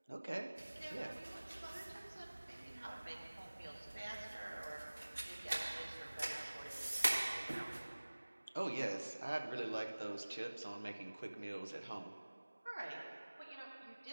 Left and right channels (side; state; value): both; inverted; correlation -1.00